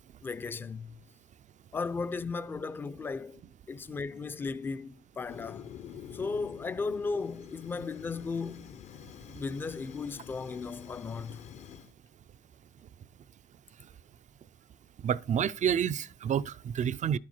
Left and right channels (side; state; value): both; normal; correlation 0.58